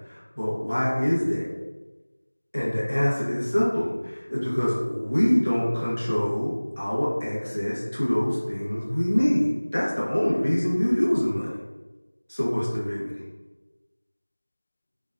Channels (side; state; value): both; inverted; correlation -1.00